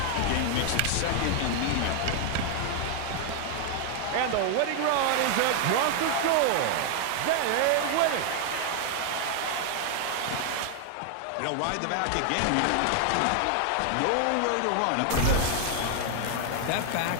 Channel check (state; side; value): different; both; correlation 0.00